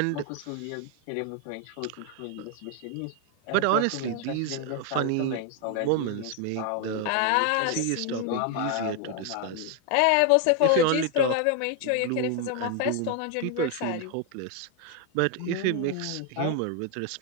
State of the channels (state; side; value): different; both; correlation 0.01